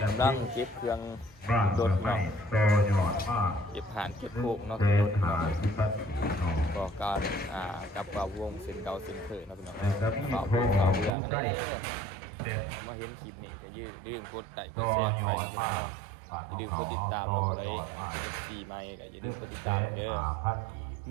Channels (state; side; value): drops out; left; at 11.1 s